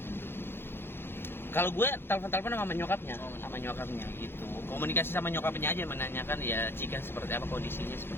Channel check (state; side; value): late; right; 0.11 ms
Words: Kalau gue telepon sama nyokapnya gitu. Komunikasi sama nyokapnya aja menanyakan ya Cika seperti apa kondisinya